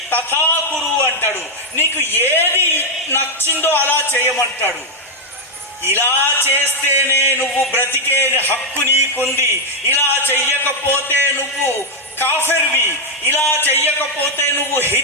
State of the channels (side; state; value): both; normal; correlation 0.00